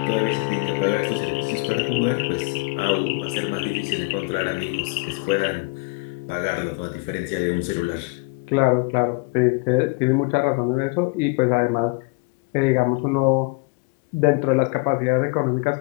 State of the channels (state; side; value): quieter; right; 27.7 dB